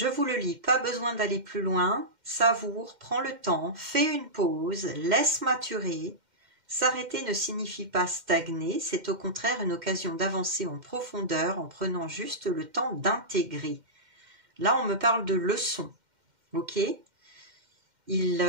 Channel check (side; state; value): left; late; 2.1 ms